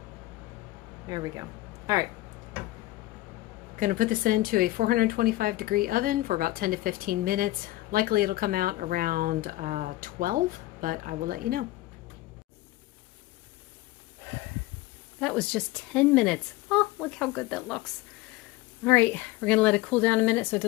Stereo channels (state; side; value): quieter; right; 17.8 dB